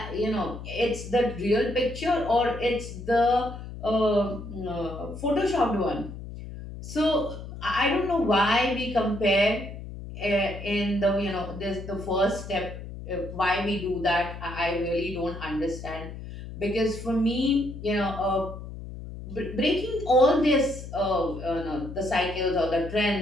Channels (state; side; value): noise; left; hum, 11 dB below the sound